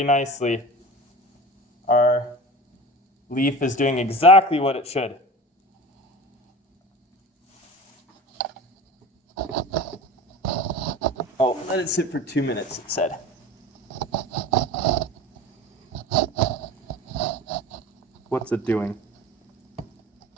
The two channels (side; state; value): both; normal; correlation 0.35